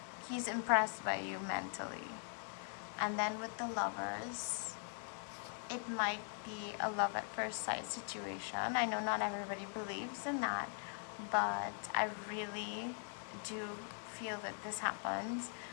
He's impressed by you mentally. And then with the Lovers, it might be a love at first sight situation. I know not everybody believes in that, but I really do feel that this happens.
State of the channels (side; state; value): right; silent; 50 dB below the other